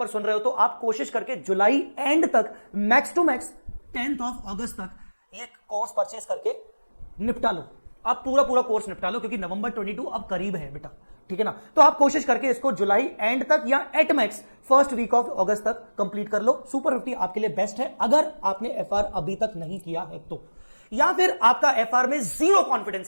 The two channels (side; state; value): both; inverted; correlation -1.00